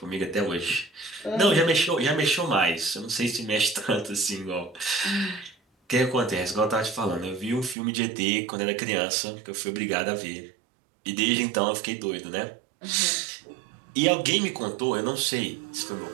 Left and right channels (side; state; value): left; drops out; at 7.8 s